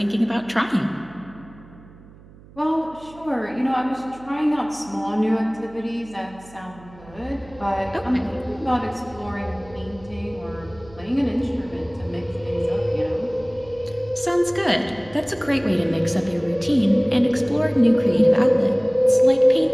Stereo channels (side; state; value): right; noise; hum, 22 dB below the sound